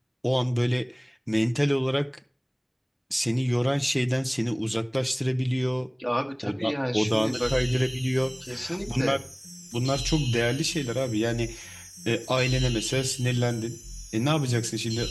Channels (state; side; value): identical; both; correlation 1.00